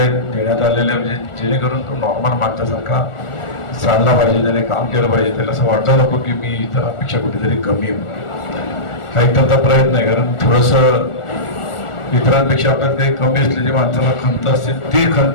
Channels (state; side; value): late; right; 1.4 ms